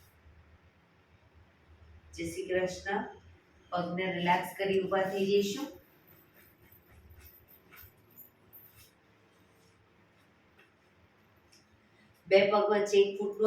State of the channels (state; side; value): identical; both; correlation 1.00